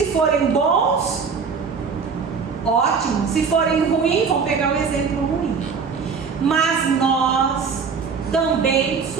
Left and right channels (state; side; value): quieter; left; 5.6 dB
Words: forem bons, ótimo. Se forem ruins, vão pegar o exemplo ruim. Mas nós também